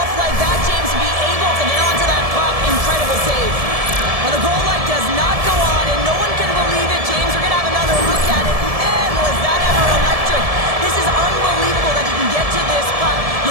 like that, James, to be able to get onto that puck. Incredible save. Well, the goal light does not go on, and no one can believe it, James. We're going to have another look at it. Man, was that ever electric. This is unbelievable that he can get to this puck.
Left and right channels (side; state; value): left; late; 1.7 ms